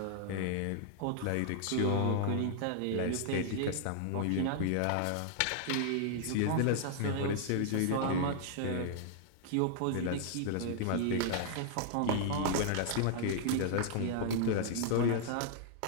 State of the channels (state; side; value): different; both; correlation 0.00